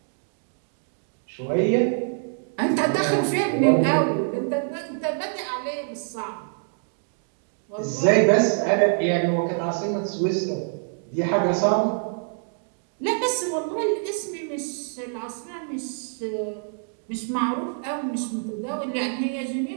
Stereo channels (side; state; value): left; silent; 61 dB below the other